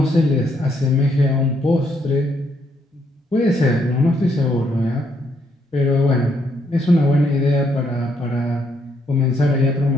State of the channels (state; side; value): normal; both; correlation 0.74